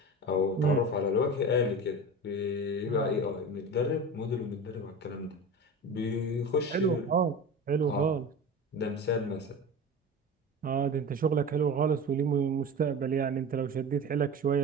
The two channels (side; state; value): both; normal; correlation 0.31